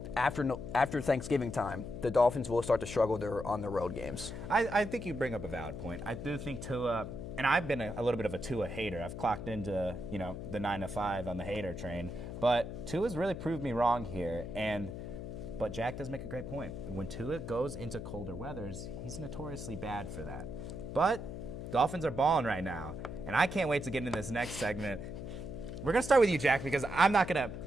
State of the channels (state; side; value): noise; left; hum, 8 dB below the sound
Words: after Thanksgiving time, the Dolphins will start to struggle on their road games. I think you bring up a valid point. I do think Tua, and I've been a little bit of a Tua hater. I've clocked into the 9 to 5 on the hater train, but Tua's really proved me wrong here. But Jack does make a great point. When Tua goes into colder weathers, he's notoriously bad for that. But Dolphins are balling right now, and I can't wait to get into this next segment. We're gonna start with you, Jack, because I'm not gonna,